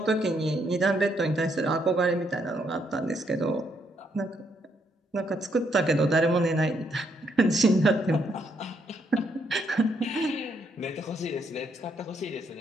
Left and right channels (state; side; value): normal; both; correlation 0.74